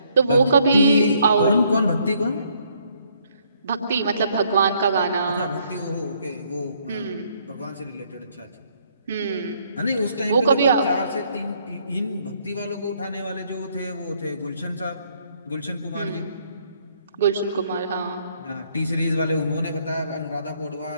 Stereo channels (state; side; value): inverted; both; correlation -0.68